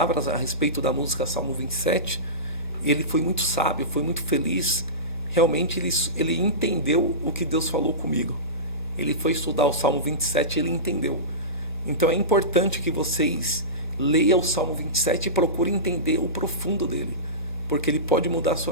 a respeito da música Salmo 27. E ele foi muito sábio, foi muito feliz. Realmente ele entendeu o que Deus falou comigo. Ele foi estudar o Salmo 27 e ele entendeu. Então é importante que vocês leiam o Salmo 27 e procurem entender o profundo dele, porque ele pode mudar a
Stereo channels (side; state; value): right; late; 1.7 ms